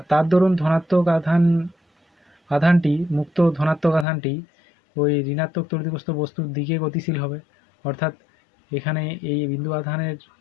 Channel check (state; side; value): drops out; right; at 4.0 s